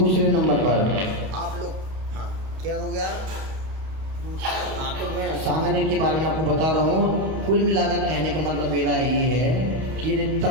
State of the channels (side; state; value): left; late; 32 ms